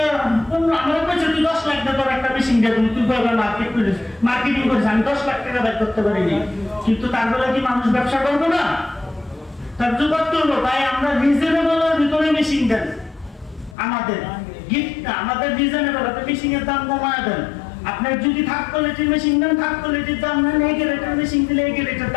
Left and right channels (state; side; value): drops out; right; at 13.8 s